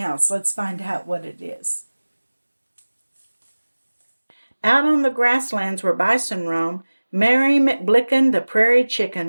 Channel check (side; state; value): both; inverted; correlation -1.00